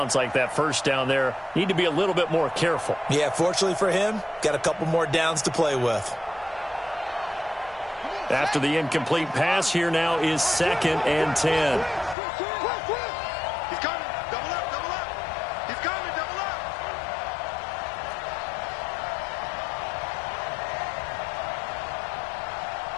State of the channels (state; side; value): drops out; right; at 12.2 s